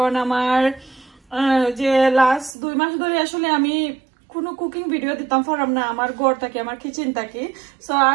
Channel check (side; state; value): left; drops out; at 2.6 s